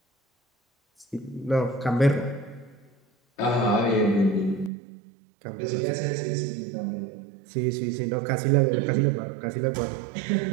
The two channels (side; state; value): left; drops out; at 4.7 s